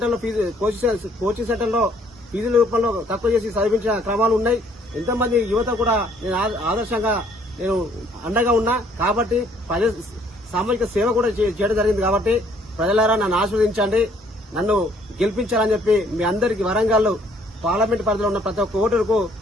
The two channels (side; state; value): both; normal; correlation 0.62